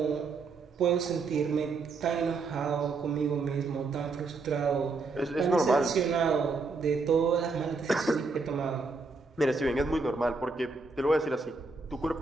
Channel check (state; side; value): quieter; left; 4.0 dB